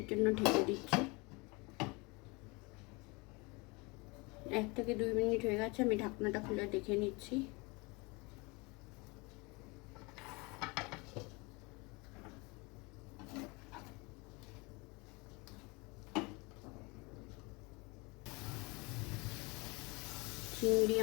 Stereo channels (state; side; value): quieter; right; 27.1 dB